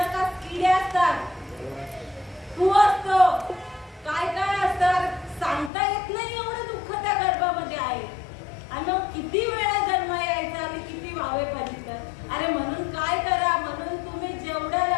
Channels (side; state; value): right; drops out; at 5.7 s